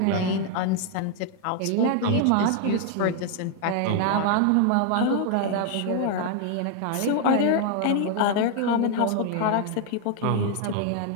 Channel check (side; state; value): both; different; correlation 0.00